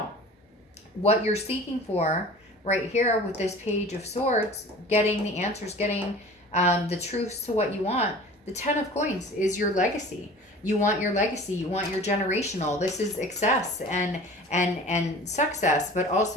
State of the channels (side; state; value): both; normal; correlation 0.42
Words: What you're seeking for right here with this Page of Swords, getting the answers, getting the truths to what you want. The 10 of Coins is your legacy. You want your legacy. You want your generational. This is excess and success, but